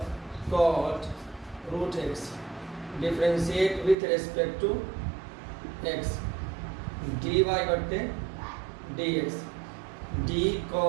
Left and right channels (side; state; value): left; drops out; at 4.0 s